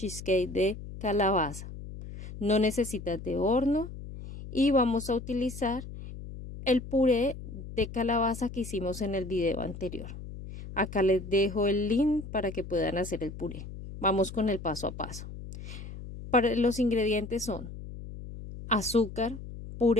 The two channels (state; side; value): noise; left; hum, 11 dB below the sound